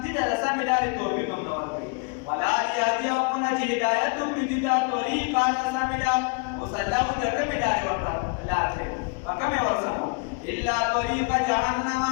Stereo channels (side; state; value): right; quieter; 34.0 dB